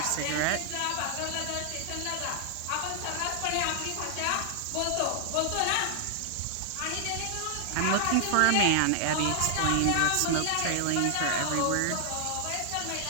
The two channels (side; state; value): both; different; correlation 0.00